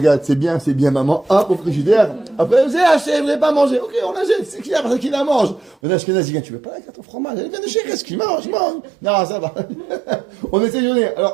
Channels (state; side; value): drops out; left; at 5.8 s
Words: c'est bien, maman. Hop, au frigidaire. Après, vous avez acheté, vous n'avez pas mangé. Ok, on l'achète, c'est qui parce qu'il la mange. On a Ashkenazi, tu veux pas la carte au fromage? Elle vient de chez qu'est-ce qu'il mange? Non, ça va. On essaie de donner.